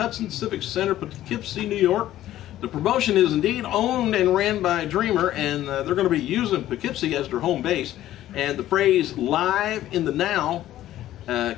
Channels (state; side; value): quieter; right; 13.6 dB